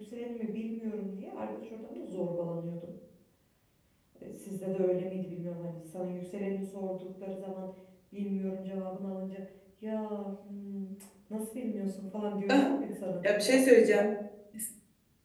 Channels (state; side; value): identical; both; correlation 1.00